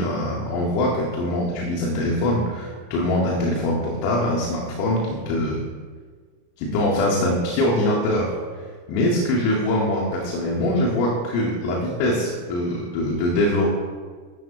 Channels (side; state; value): right; late; 34 ms